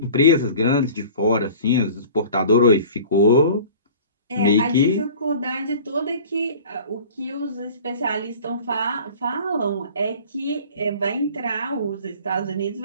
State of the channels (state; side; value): inverted; both; correlation -0.44